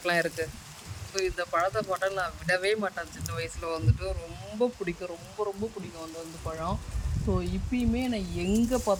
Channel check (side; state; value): both; identical; correlation 1.00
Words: இருக்குது. ஸோ இந்த பழத்தை போட்டால் நான் விடவே மாட்டேன். சின்ன வயசில் வந்துட்டு ரொம்ப பிடிக்கும், ரொம்ப ரொம்ப பிடிக்கும் அந்த பழம். ஸோ இப்பயுமே நான் எங்கே